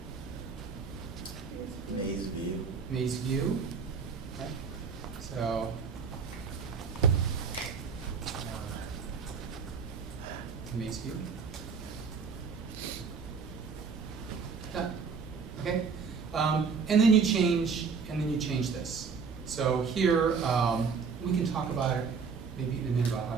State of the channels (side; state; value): left; quieter; 5.6 dB